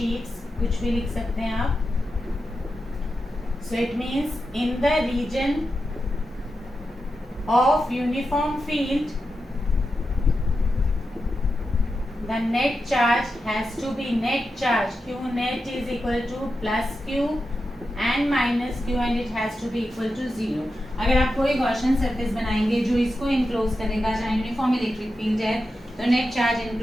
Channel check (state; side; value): normal; both; correlation 0.89